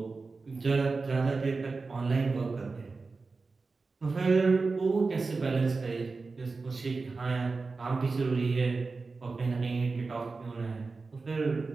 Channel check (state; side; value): quieter; left; 4.1 dB